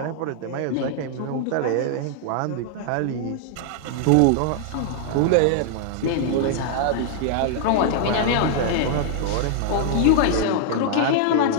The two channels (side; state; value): both; different; correlation -0.01